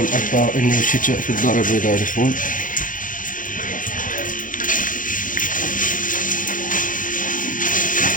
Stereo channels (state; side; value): late; right; 0.39 ms